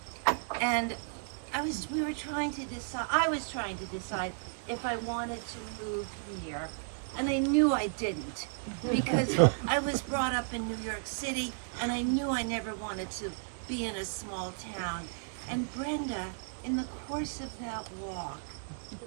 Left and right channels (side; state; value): left; silent; digital silence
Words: and I was trying to decide if I wanted to move here, and I knew I didn't, because I was brought up in New York City, and I knew I never wanted to be in a small town, and Brenda, in the course of that walk,